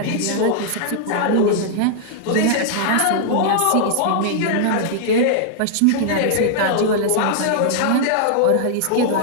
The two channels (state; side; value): different; both; correlation -0.01